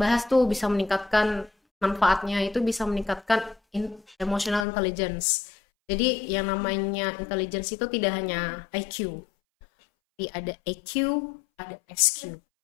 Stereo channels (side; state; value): right; drops out; at 4.7 s